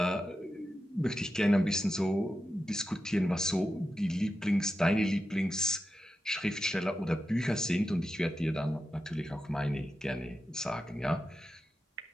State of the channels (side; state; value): both; normal; correlation 0.89